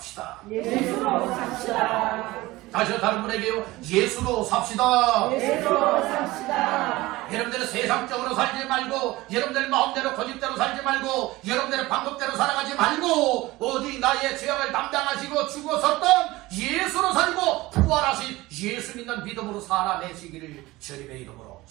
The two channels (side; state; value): left; quieter; 19.4 dB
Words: 예수로 삽시다. 다시 다른 분에게요. 예수로 삽시다. 예수로 삽시다. 여러분들은 세상적으로 살지 말고, 여러분들 마음대로 고집대로 살지 말고, 여러분들의 방법대로 살아가지 말고, 오직 나의 죄악을 담당하시고 죽어섰던 예수로 살고 부활하신 예수 믿는 믿음으로 살아내시기를 주님의 이름으로